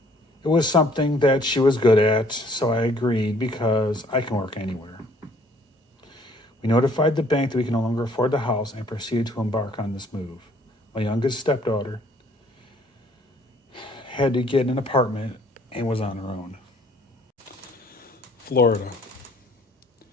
It was something that she was good at, so I agreed because I can work anywhere. We notified the bank that we can no longer afford the house and proceeded to embark on this move. My youngest stepdaughter had to get an apartment and was on her own. Florida.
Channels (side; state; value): both; normal; correlation 0.60